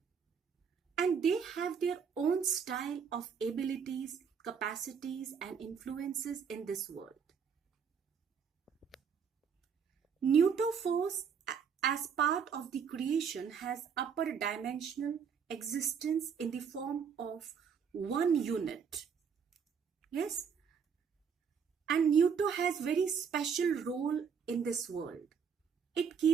And they have their own style of abilities, capacities, and influences in this world. Neuto force, as part of the creation, has upper dimensional existence in the form of one unit. Yes, and Neuto has very special role in this world. It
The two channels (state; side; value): quieter; left; 6.7 dB